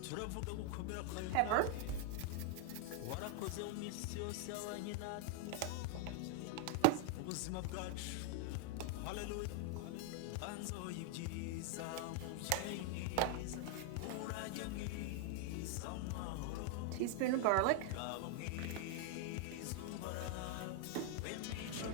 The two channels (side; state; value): both; different; correlation 0.00